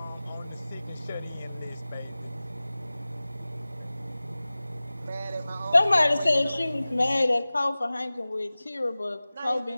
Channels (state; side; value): inverted; both; correlation -0.98